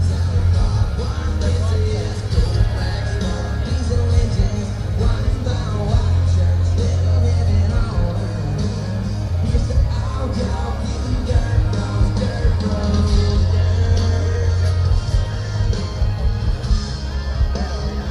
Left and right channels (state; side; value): identical; both; correlation 1.00